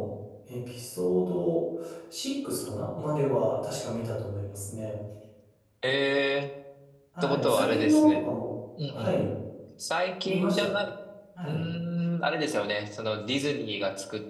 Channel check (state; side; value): identical; both; correlation 1.00